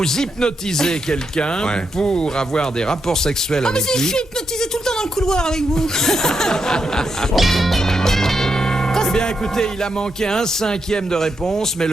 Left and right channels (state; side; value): normal; both; correlation 0.83